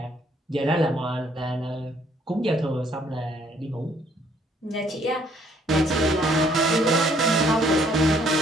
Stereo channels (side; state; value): both; normal; correlation 0.65